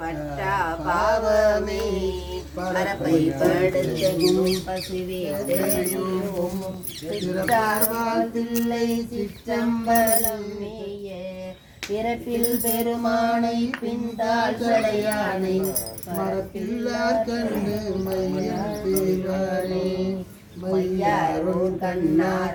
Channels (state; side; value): identical; both; correlation 1.00